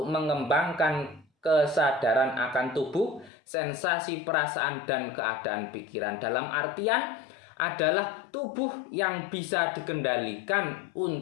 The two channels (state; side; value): drops out; right; at 3.3 s